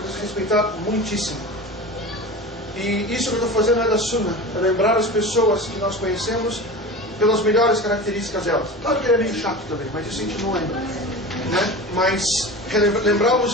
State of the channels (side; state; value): both; normal; correlation 0.32